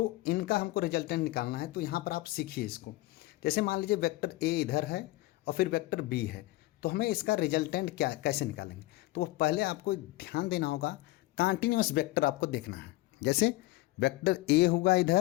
इनका हमको रिजल्टेंट निकालना है। तो यहाँ पर आप सीखिए इसको। जैसे मान लीजिए वेक्टर ए इधर है और फिर वेक्टर बी है, तो हमें इसका रिजल्टेंट क्या कैसे निकालेंगे, तो वो पहले आपको ध्यान देना होगा, कॉन्टिन्यूअस वेक्टर आपको देखना है। जैसे वेक्टर ए होगा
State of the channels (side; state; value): right; quieter; 18.7 dB